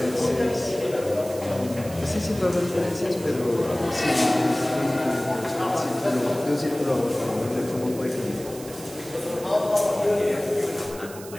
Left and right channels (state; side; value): noise; right; hiss, 16 dB below the sound